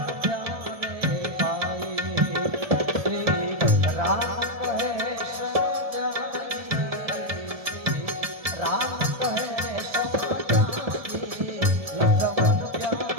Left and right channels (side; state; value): left; late; 1.7 ms